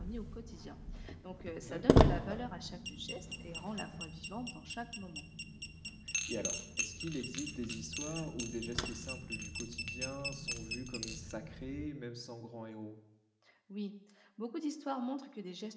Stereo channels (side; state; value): both; identical; correlation 1.00